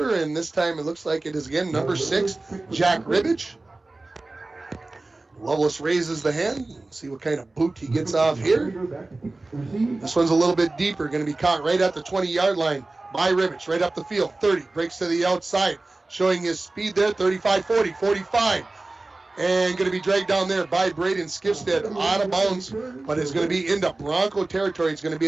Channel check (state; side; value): quieter; left; 3.1 dB